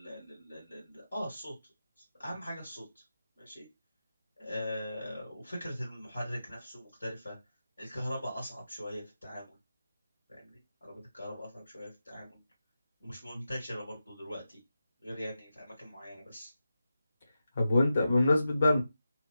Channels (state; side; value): inverted; both; correlation -0.90